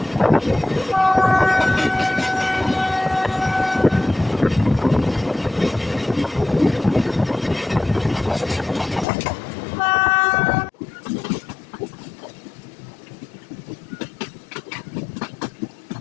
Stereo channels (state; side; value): drops out; right; at 9.1 s